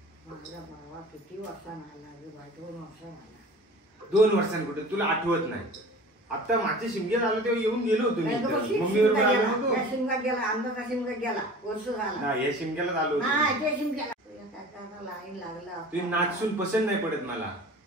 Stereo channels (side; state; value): both; normal; correlation 0.41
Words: माझा बाबा किती वर्षांना आला रे बा. 2 वर्षांना आला. 2 वर्षांनी कुठे तुला आठवत नाही? आता मागच्या शिमग्यात आलो तेव्हा येऊन गेलो होतो मी. मम्मीवर शिमगा गेला, आमचा शिमगा गेला, वर्ष झाला. या शिमग्यालाच आलो होतो. लाईन लागला. तुझी नाचसून पसंत नाही पडत मला.